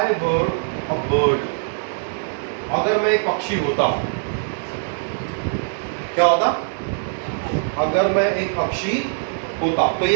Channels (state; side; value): silent; left; digital silence